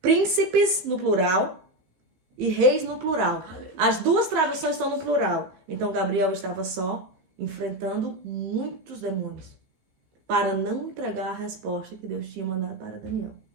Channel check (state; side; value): late; left; 16 ms